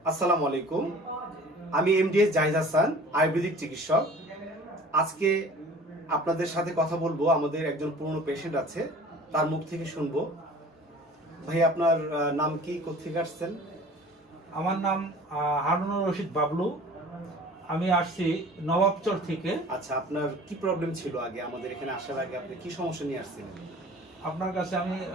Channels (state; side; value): normal; both; correlation 0.45